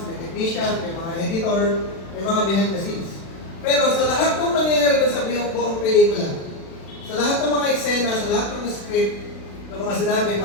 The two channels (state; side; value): late; right; 36 ms